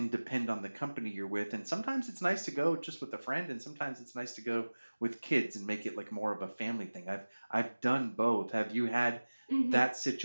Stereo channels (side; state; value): both; inverted; correlation -1.00